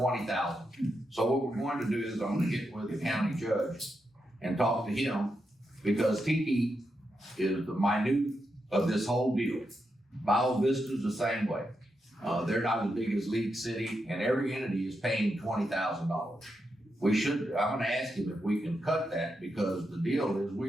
So what we're going to do is I'm going to get with the county judge and talk to him because Tiki is the minute of this whole deal. Bio Vista's the same way. They're not as big as League City, and every entity is paying $20,000. I'm gonna ask him if we can cut that, because the deal is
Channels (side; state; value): both; normal; correlation 0.85